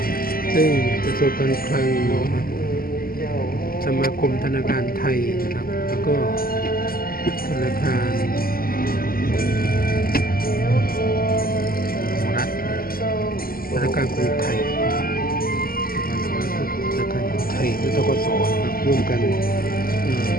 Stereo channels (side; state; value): right; late; 0.42 ms